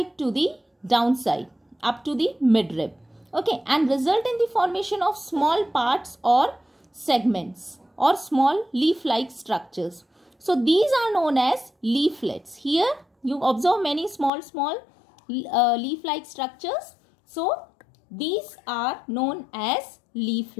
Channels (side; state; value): right; drops out; at 14.3 s